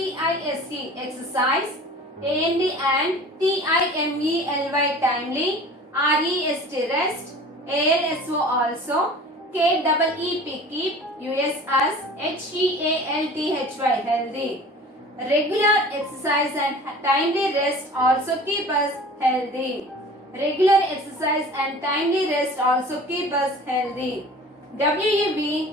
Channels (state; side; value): normal; both; correlation 0.42